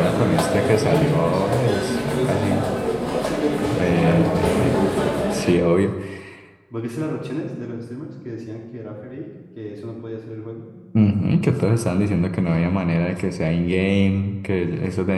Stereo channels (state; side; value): identical; both; correlation 1.00